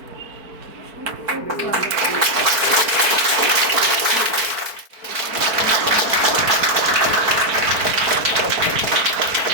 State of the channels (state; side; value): late; left; 4.5 ms